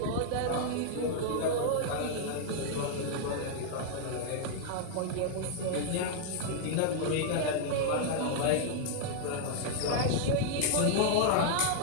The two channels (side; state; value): both; different; correlation -0.01